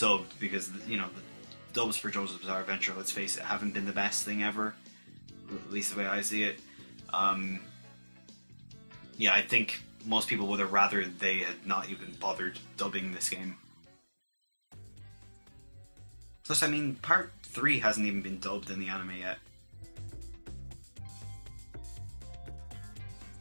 because, you know, the dubs for JoJo's Bizarre Adventure, let's face it, haven't been the best thing ever, at least the way I see it. Yeah, I think most people would have rather they had not even bothered dubbing this game. Plus, I mean, part 3 hasn't even been dubbed in the anime yet.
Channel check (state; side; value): inverted; both; correlation -1.00